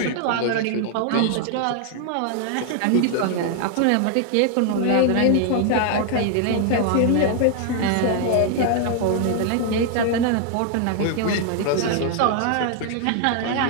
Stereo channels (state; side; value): different; both; correlation 0.00